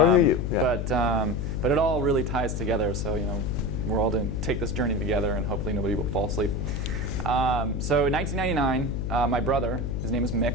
of you. Yeah. But it all really ties together. So we're all going to take this journey together, and hopefully nobody will fall asleep. So in 1999, my brother, his name is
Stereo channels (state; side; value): noise; left; hum, 2 dB below the sound